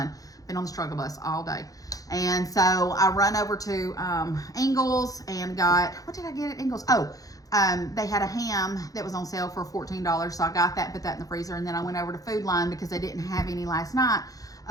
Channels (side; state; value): right; late; 0.17 ms